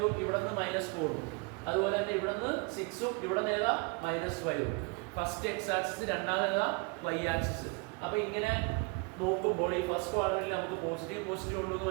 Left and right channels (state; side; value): quieter; left; 30.7 dB